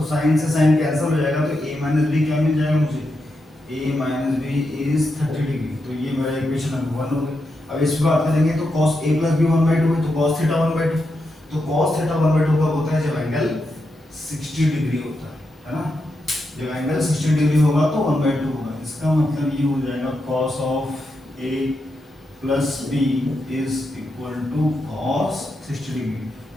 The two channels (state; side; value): normal; both; correlation 0.85